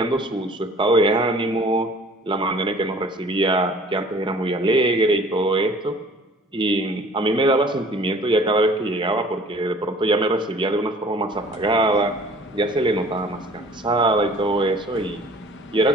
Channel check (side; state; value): both; normal; correlation 0.50